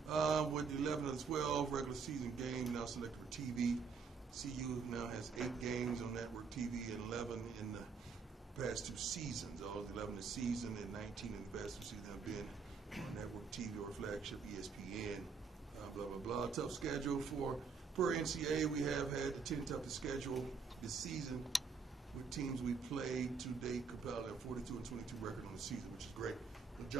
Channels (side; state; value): left; quieter; 5.2 dB